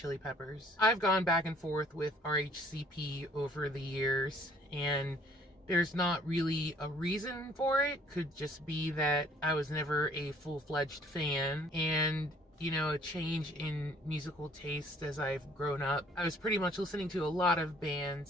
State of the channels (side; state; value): both; normal; correlation 0.58